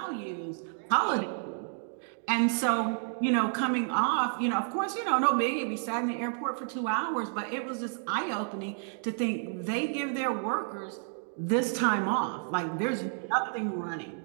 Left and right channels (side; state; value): left; silent; 57 dB below the other